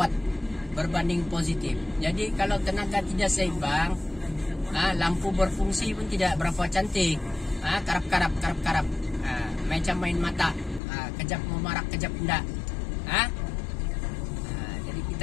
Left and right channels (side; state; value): right; drops out; at 10.8 s